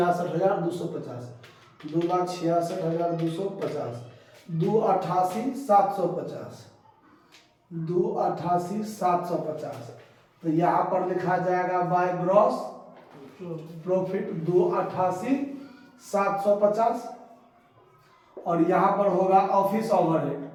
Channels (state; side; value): identical; both; correlation 1.00